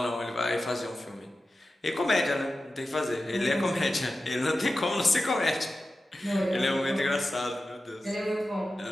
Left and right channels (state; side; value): normal; both; correlation 0.93